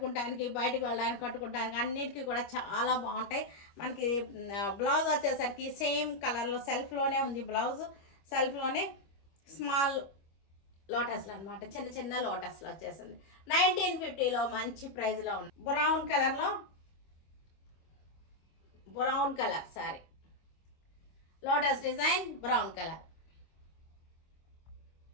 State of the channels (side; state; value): right; late; 25 ms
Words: బయటకు వెళ్ళడానికి, కట్టుకుంటానికి అన్నిటికీ కూడా చాలా బాగుంటాయి. మనకి బ్లౌజ్ వచ్చేసరికి సేమ్ కలర్లో సెల్ఫ్లోనే ఉంది. బ్లౌజ్ సెల్ఫ్లోనే స్మాల్ లోటస్లు అనమాట, చిన్న చిన్న లోటస్లు వచ్చేసింది. 1950 మంచి ప్రైస్లో ఉంది. బ్రౌన్ కలర్లో, brown colour sorry, lotus design brown colour.